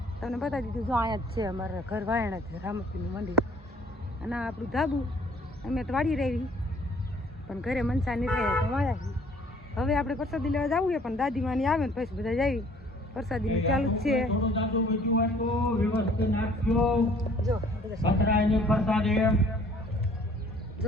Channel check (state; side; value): normal; both; correlation 0.56